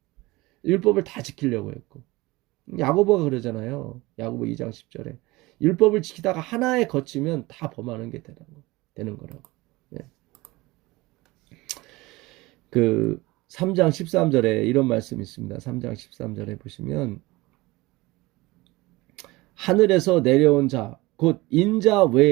율법을 다 지키려고 했고 야고보가 그러잖아요. 야고보 2장 10절에 율법을 지키다가 하나에 거치면 다 범하는 게 되는 거라고. 예. 그 3장 13절에 이런 말씀이 있습니다. 3장 13절에 보시면 하늘에서 내려온 자 곧 인자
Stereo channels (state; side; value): quieter; left; 21.2 dB